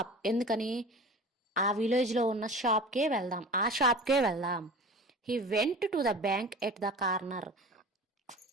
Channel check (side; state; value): both; normal; correlation 0.37